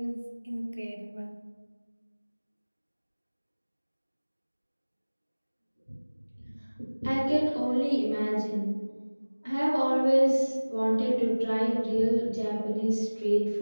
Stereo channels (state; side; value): inverted; both; correlation -1.00